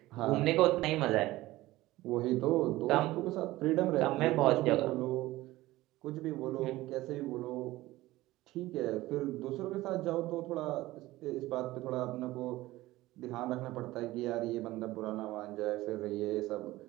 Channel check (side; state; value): left; quieter; 17.6 dB